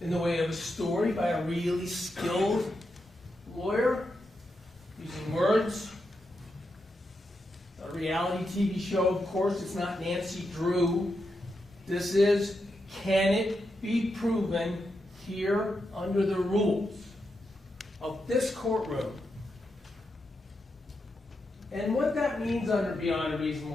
in the way of a story by a really skilled lawyer using words. A reality TV show, of course, it's not Nancy Drew. This is, can it be proven here under the rules of this courtroom? And what that means under beyond a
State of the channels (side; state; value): both; normal; correlation 0.86